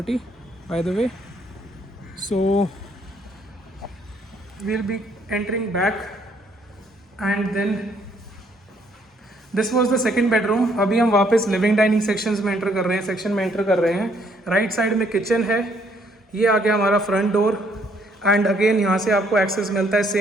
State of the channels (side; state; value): both; normal; correlation 0.67